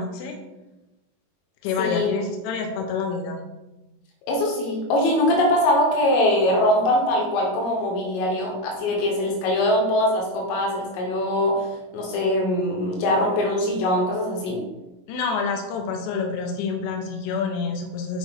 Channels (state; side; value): late; right; 22 ms